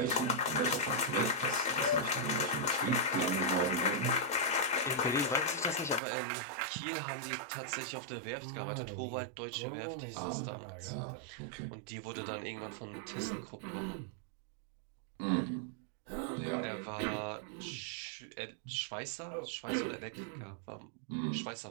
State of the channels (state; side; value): drops out; left; at 6.0 s